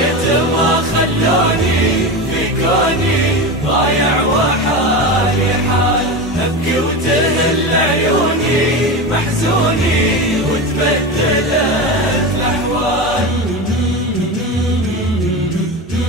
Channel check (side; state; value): both; normal; correlation 0.23